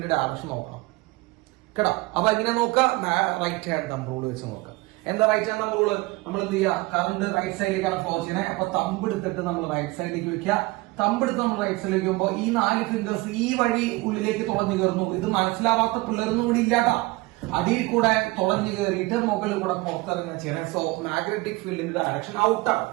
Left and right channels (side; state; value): left; quieter; 22.2 dB